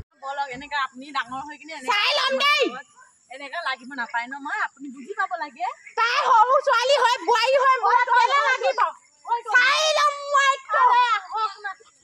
বলক এনেকা আপুনি ডাঙৰ হৈ কিনে চাই ল'ম দেই এনেকা লাগিব নাপায় ন মই আপুনি বুজি পাব লাগে তাই সৰু ছোৱালী হৈ বোৱাৰী হৈ মোৰ লাগিব চাই ল'ম মই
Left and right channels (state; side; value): identical; both; correlation 1.00